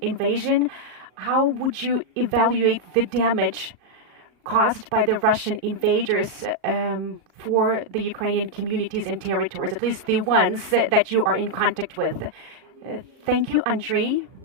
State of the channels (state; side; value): late; left; 38 ms